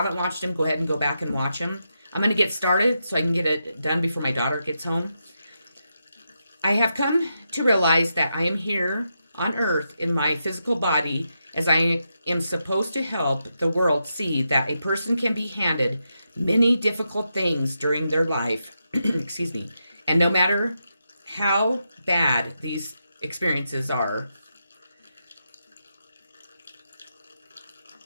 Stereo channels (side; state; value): both; inverted; correlation -0.85